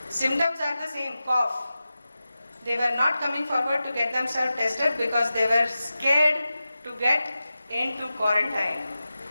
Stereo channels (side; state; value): both; inverted; correlation -0.93